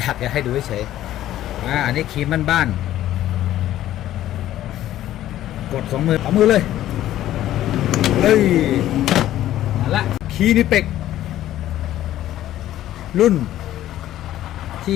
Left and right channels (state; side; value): quieter; right; 13.2 dB